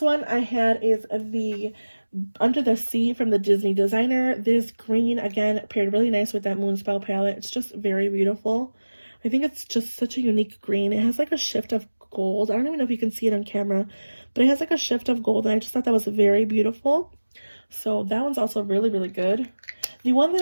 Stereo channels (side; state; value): both; inverted; correlation -1.00